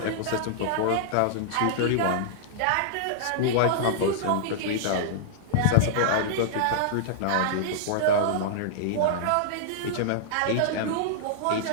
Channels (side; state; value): both; different; correlation -0.02